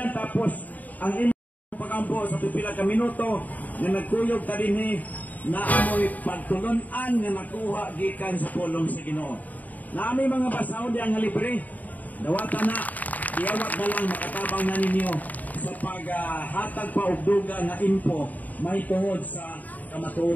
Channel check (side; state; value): right; late; 0.078 ms